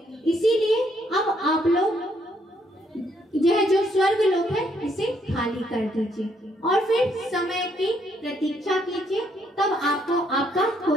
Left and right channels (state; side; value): normal; both; correlation 0.71